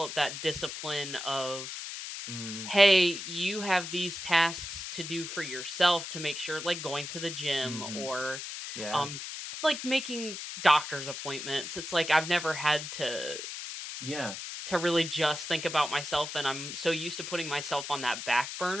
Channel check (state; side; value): noise; left; hiss, 7 dB below the sound